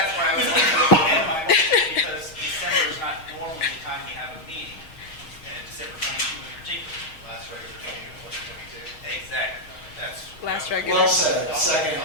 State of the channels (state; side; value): late; right; 6.3 ms